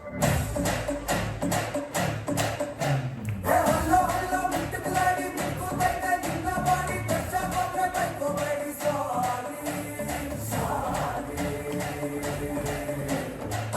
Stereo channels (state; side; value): identical; both; correlation 1.00